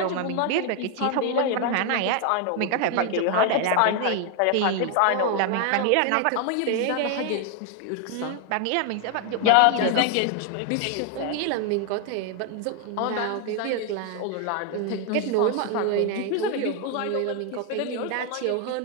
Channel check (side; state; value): both; different; correlation 0.01